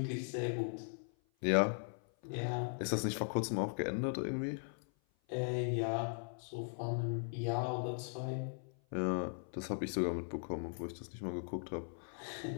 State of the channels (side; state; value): right; silent; 52 dB below the other